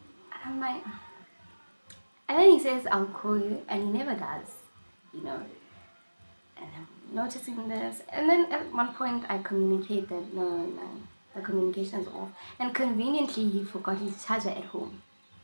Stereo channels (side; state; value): both; inverted; correlation -1.00